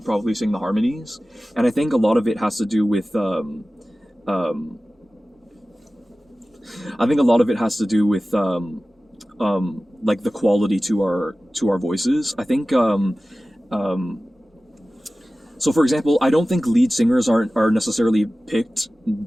probably sing the harmonies, and I think a lot of it has to do with I think a lot of it has to do with like the quality to our voices. I think so for example, I don't think lead singers are necessarily picked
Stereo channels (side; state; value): both; normal; correlation 0.96